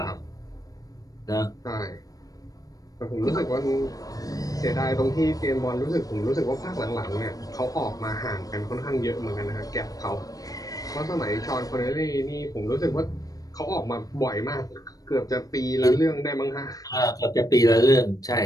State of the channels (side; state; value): right; late; 0.18 ms